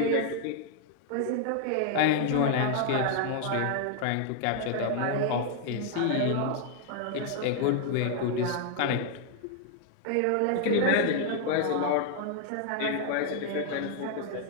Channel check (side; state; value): both; different; correlation 0.00